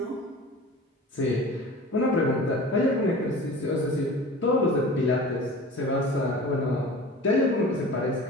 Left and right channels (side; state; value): both; normal; correlation 0.39